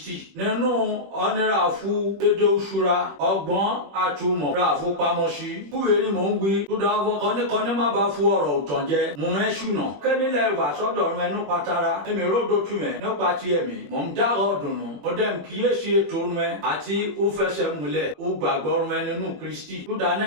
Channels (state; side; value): late; left; 21 ms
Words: nínú ọ̀nẹ́ra fún dédé òṣùra ọgbọ́n àtúmọ̀ ra àfọpamọ́sí fúwèé ni mò ń wí. Tó dáwọ́ kọ́níkọ́ní má bá fún ọ̀rọ̀ òtàn jẹ mú ẹ ṣùnà kẹ́mílẹ̀ wà sọ́dọ̀ rẹ nípa tara èmi ródò tù mẹ́ nípa ti ẹ̀mí mò ń dá ọ̀dùnnú ọdẹm kíyèsí ètò rẹ àti ó fẹsẹ̀ múlẹ̀ ó gbàgbọ́ rẹ nínú Kristi tó dáná